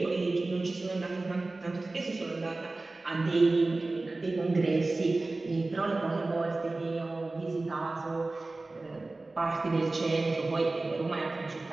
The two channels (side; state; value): left; quieter; 3.2 dB